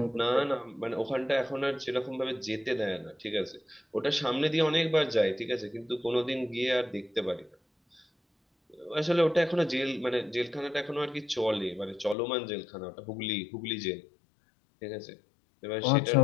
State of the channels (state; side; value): drops out; right; at 12.2 s